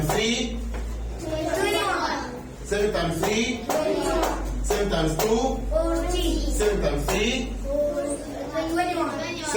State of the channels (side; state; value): both; identical; correlation 1.00